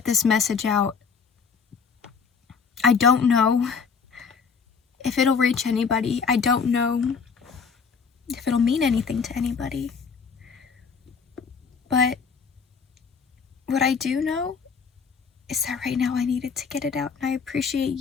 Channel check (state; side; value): quieter; right; 5.8 dB